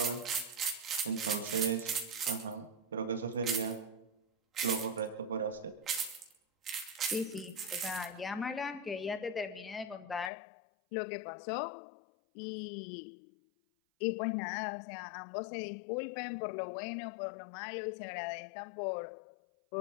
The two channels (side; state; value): right; drops out; at 10.3 s